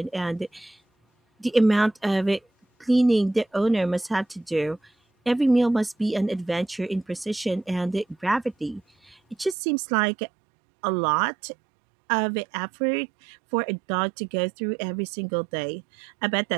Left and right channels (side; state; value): left; drops out; at 9.6 s